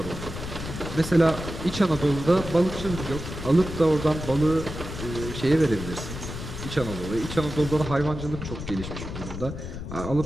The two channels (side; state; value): left; noise; rumble, 8 dB below the sound